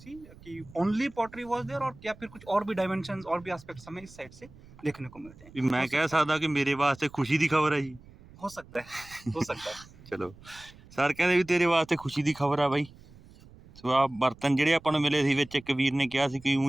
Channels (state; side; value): noise; right; rumble, 22 dB below the sound